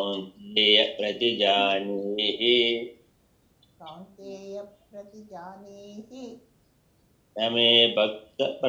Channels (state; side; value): identical; both; correlation 1.00